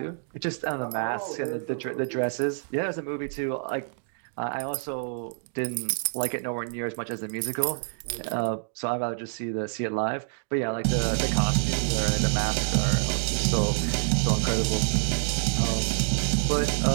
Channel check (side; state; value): left; silent; digital silence